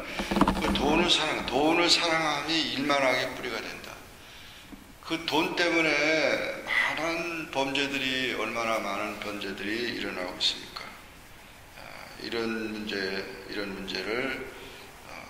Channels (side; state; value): both; identical; correlation 1.00